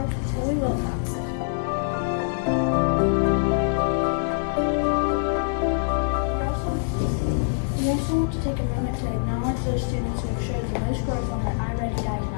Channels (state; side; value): silent; right; 62 dB below the other